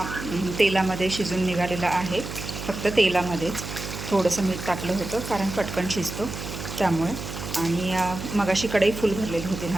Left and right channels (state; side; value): noise; right; hum, 8 dB below the sound